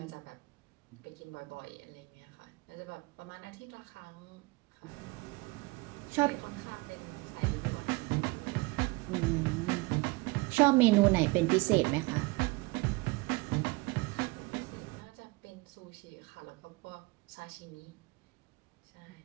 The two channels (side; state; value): left; quieter; 24.4 dB